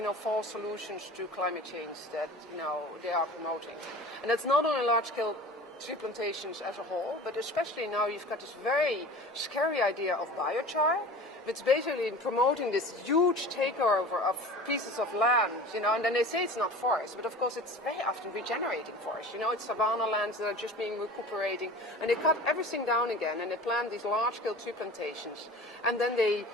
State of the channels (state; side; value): normal; both; correlation 0.38